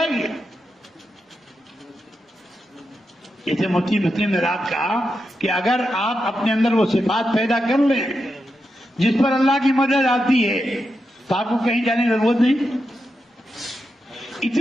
گی. جیسے مفتی مسلم نے رات کہا کہ اگر آپ اپنے اندر وہ صفات پیدا کر لیں جس پر اللہ کی مدد آتی ہے تو آپ کو کہیں جانے کی ضرورت نہیں.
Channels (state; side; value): normal; both; correlation 0.87